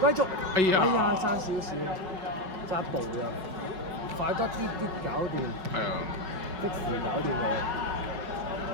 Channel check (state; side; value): late; left; 5.4 ms